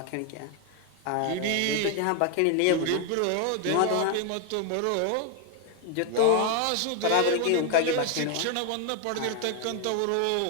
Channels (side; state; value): both; different; correlation 0.01